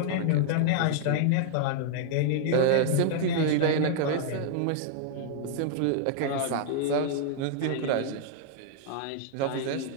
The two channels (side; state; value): both; different; correlation -0.01